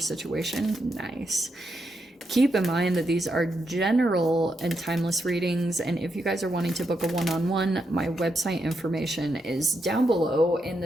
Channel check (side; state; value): both; normal; correlation 0.82